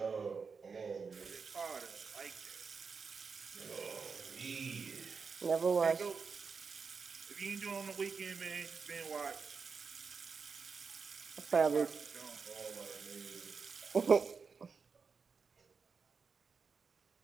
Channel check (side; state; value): left; quieter; 5.3 dB